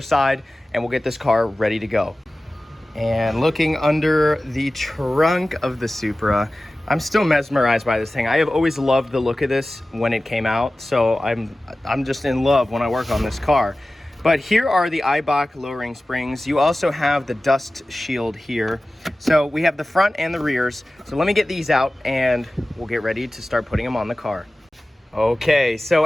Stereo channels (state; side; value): normal; both; correlation 0.96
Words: and we'll get this car ready to go. And looking under the trunk of the Supra, I'm still mesmerized by this thing. I have always loved the look of this when it came out, so I'm just in love when I work on this car. But here are the Eibach Lowering Springs. You also have the dust shield here. So we have the front and the rears. So let me get these out and we'll get ready to start putting them on the car. Okay, so